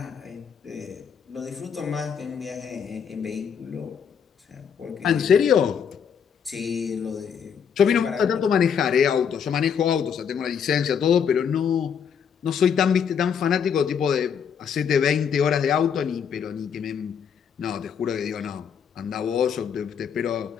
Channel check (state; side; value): quieter; right; 7.4 dB